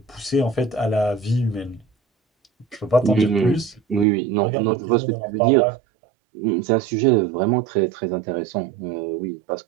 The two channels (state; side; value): drops out; left; at 4.0 s